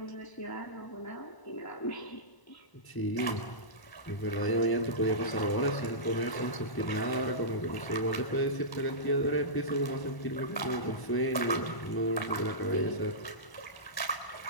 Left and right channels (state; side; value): late; right; 1.0 ms